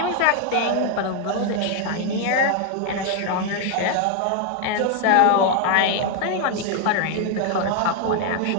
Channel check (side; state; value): both; different; correlation 0.00